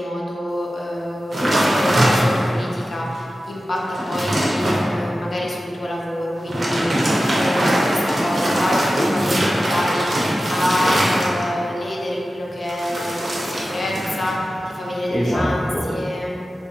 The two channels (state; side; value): normal; both; correlation 0.94